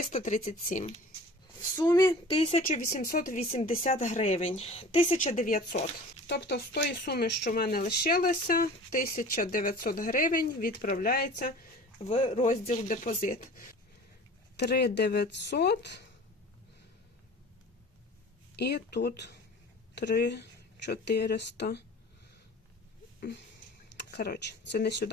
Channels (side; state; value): both; normal; correlation 0.42